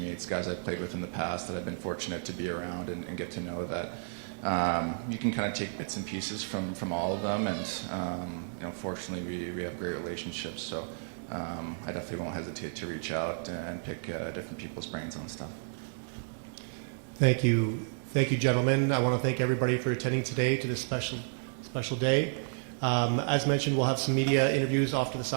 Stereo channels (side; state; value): left; silent; digital silence